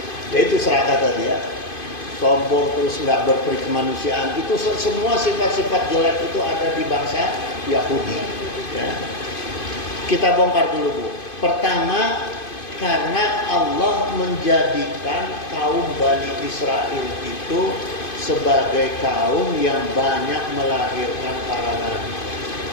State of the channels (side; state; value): right; late; 2.5 ms